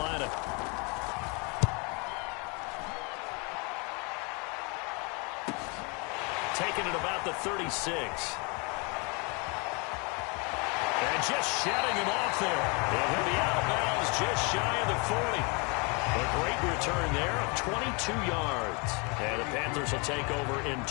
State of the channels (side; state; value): right; quieter; 31.4 dB